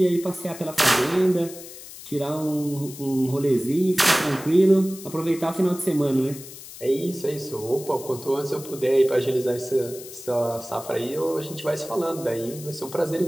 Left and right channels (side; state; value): left; noise; hiss, 15 dB below the sound